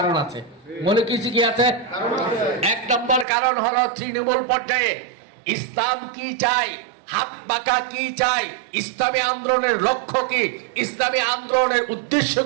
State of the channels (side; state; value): left; drops out; at 3.2 s